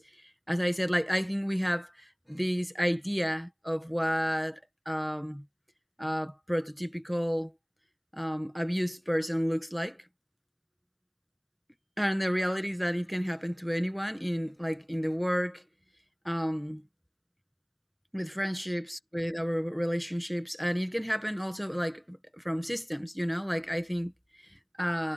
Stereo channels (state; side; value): identical; both; correlation 1.00